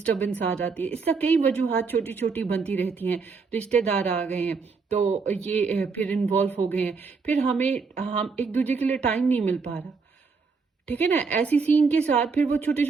आ जाती है। इसका कई वजूहात छोटी छोटी बनती रहती हैं, रिश्तेदार आ गए हैं तो ये फिर इन्वॉल्व हो गए हैं, फिर हम एक दूसरे के लिए टाइम नहीं मिल पा रहा। ठीक है ना, ऐसी सीन के साथ फिर वो छोटे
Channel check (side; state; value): left; quieter; 4.9 dB